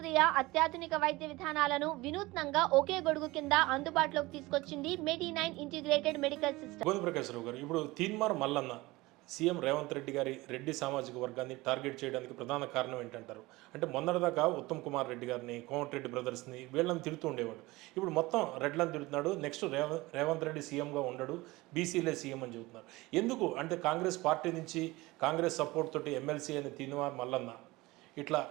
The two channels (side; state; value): left; quieter; 20.8 dB